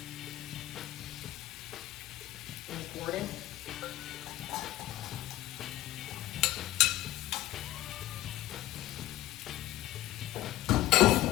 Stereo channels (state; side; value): quieter; right; 15.5 dB